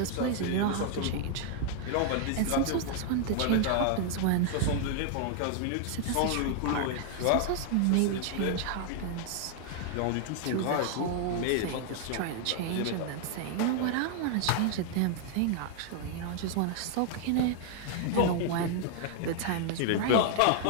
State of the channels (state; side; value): different; both; correlation 0.00